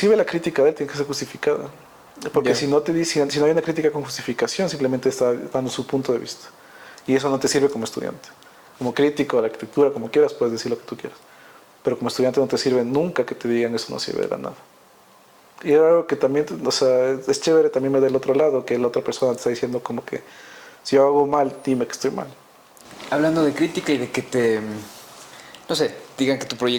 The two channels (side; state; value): both; identical; correlation 1.00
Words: la crítica de él tiene que ser justificada. Porque si no te dicen, si no hay una crítica con justificación, simplemente está dando su punto de vista. Y eso no te sirve como estudiante. Como crítico de la arquitectura, como quieras, puedes decir lo que tú quieras. pero como estudiante no te sirve nunca que te digan eso, no sirve de nada. Y era algo que también, o sea, es chévere también ver del otro lado, que la otra persona te está diciendo como que si yo hago mal, dime que estoy mal. Hablando de crítica y de que te, no sé, digan que tu